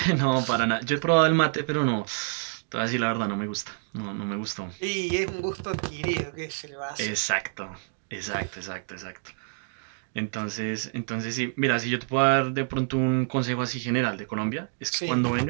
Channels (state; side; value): silent; left; digital silence